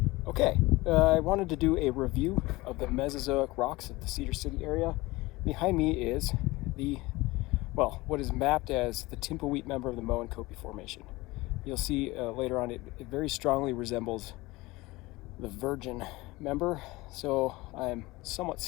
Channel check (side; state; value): right; quieter; 20.9 dB